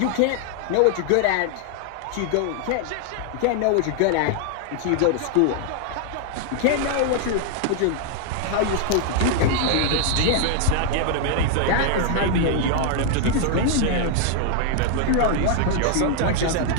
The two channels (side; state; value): both; different; correlation 0.00